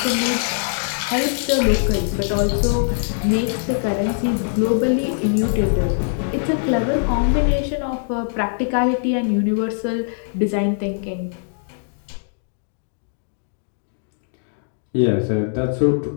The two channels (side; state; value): right; silent; digital silence